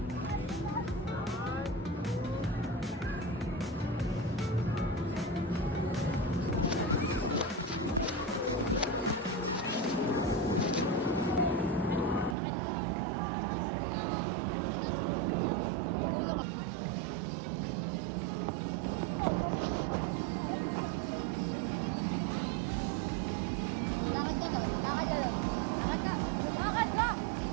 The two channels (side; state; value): left; drops out; at 12.4 s